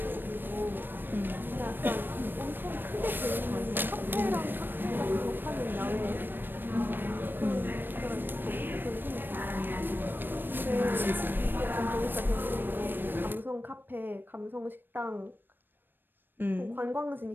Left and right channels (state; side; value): late; left; 0.095 ms